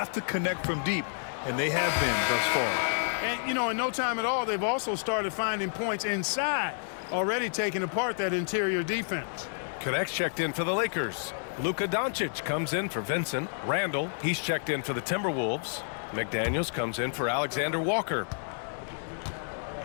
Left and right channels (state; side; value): silent; right; digital silence